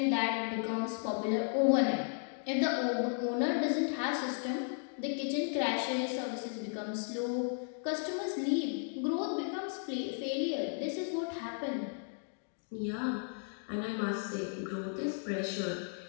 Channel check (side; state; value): right; silent; 55 dB below the other